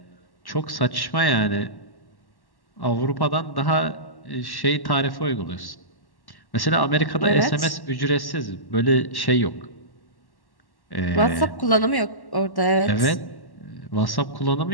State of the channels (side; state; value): right; late; 1.1 ms